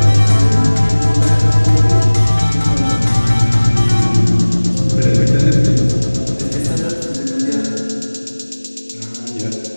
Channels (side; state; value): both; inverted; correlation -1.00